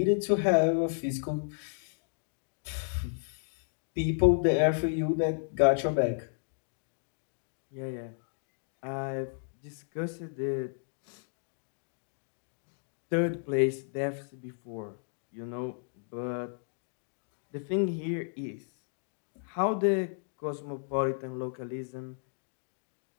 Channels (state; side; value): silent; right; digital silence